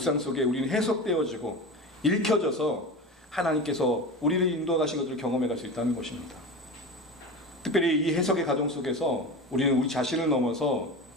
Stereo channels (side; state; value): both; normal; correlation 0.28